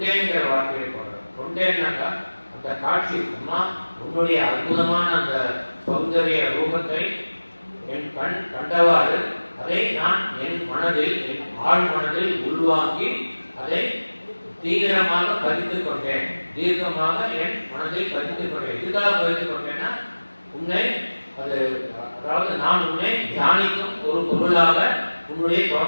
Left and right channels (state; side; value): inverted; both; correlation -1.00